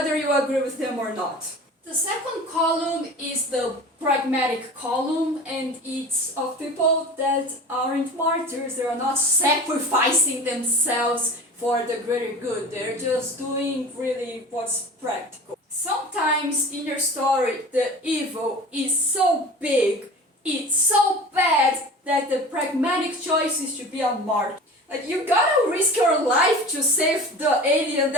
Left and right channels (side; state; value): both; normal; correlation 0.37